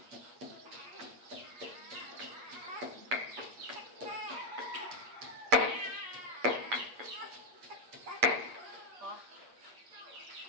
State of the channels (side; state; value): left; late; 8.4 ms